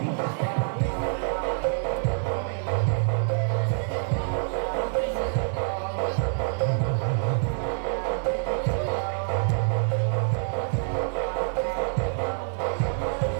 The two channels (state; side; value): silent; left; digital silence